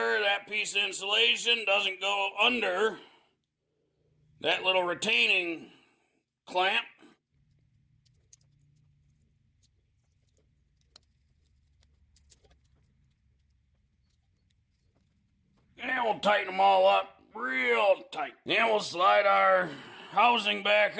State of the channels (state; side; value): identical; both; correlation 1.00